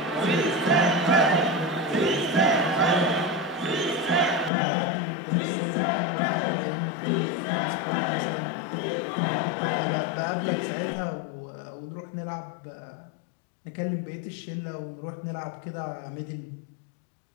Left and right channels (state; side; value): drops out; right; at 4.5 s